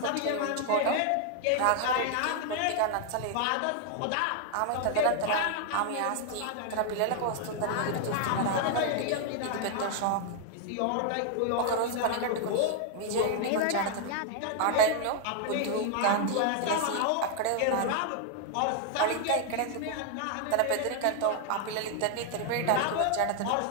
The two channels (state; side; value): different; both; correlation 0.00